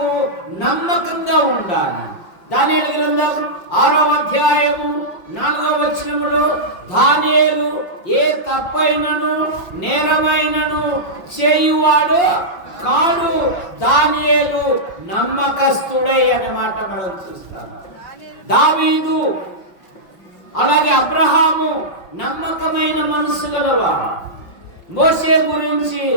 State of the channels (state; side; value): late; right; 5.6 ms